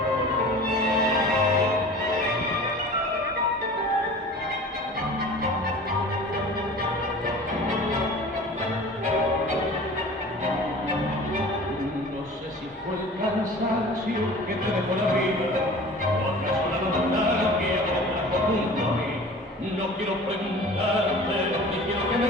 No sé si fue el cansancio que te dejó la vida, o acaso la nostalgia que te trajo junto a mí. No quiero preguntarte, ni quiero que me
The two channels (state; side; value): normal; both; correlation 0.41